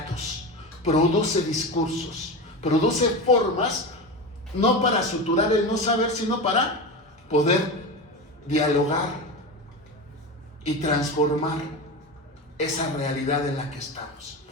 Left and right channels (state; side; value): normal; both; correlation 0.23